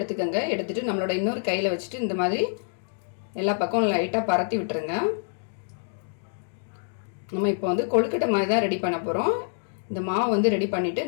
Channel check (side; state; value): right; silent; digital silence